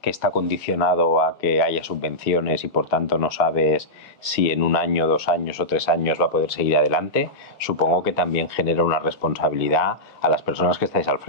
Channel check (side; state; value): both; normal; correlation -0.11